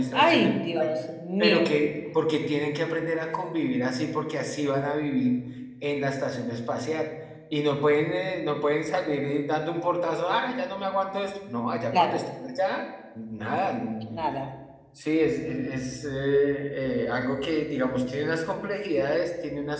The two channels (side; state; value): both; identical; correlation 1.00